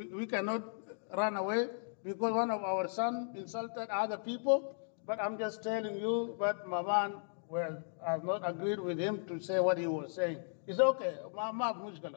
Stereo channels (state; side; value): silent; right; digital silence